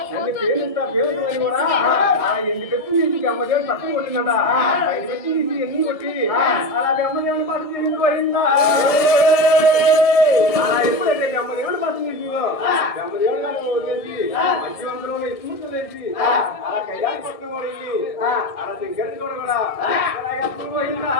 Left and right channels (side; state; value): right; late; 1.7 ms